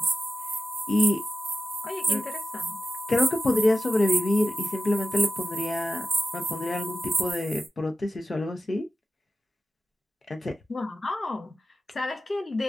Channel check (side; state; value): both; normal; correlation 0.93